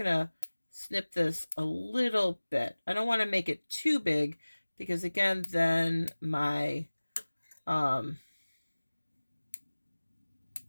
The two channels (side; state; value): both; inverted; correlation -1.00